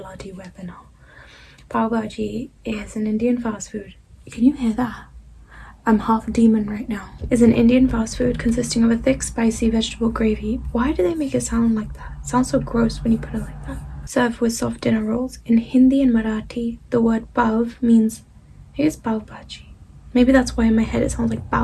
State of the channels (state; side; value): identical; both; correlation 1.00